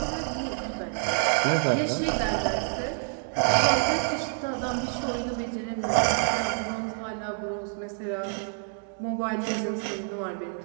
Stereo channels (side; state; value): left; silent; 60 dB below the other